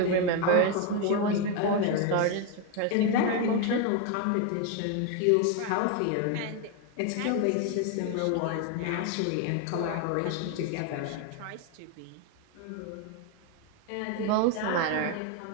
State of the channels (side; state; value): both; different; correlation 0.01